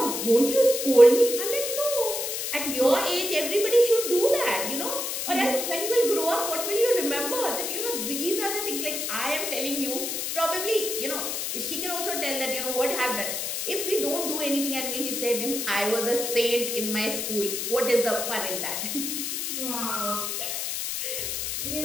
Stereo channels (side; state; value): left; noise; hiss, 2 dB below the sound